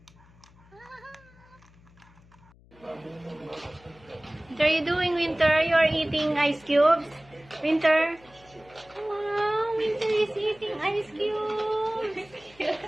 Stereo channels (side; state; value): left; noise; hum, 27 dB below the sound